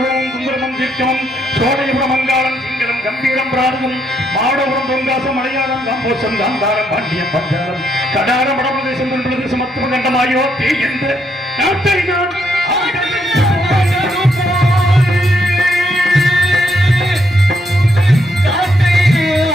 குங்குரமும் தீர்க்கமும் சோழயபுரம் மங்காளம் சிங்களம் கம்பீரம் பிராரதம் மாடபுரம் தொங்காசம் மலையாளம் காம்போசம் காந்தாரம் பாண்டியம் பஞ்சாரம் கடாரம் வடபிரதேசம் தென்பிரதேசம் மத்துவ கண்டமாயோ தே என்ற நாட்டை நான்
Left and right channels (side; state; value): both; normal; correlation 0.75